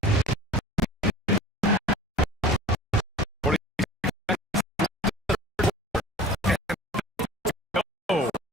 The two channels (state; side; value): normal; both; correlation 0.41